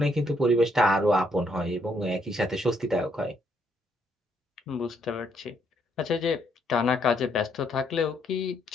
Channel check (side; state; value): both; normal; correlation 0.73